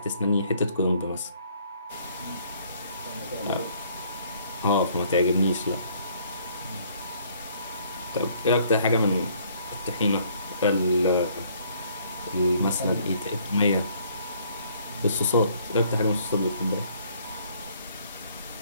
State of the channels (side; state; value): both; inverted; correlation -0.63